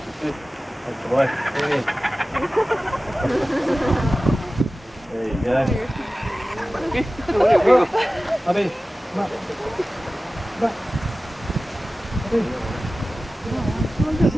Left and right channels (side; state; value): both; normal; correlation 0.96